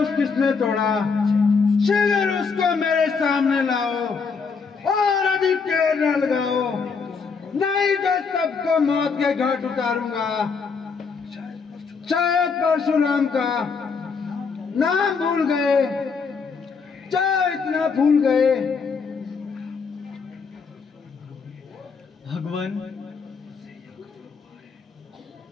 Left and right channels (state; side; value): quieter; right; 5.3 dB